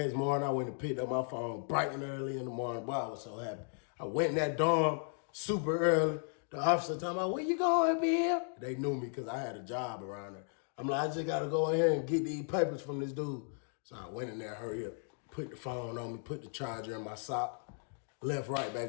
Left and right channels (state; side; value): silent; right; 54 dB below the other